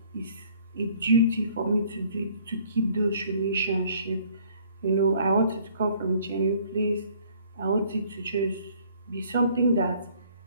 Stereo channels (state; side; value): inverted; both; correlation -0.59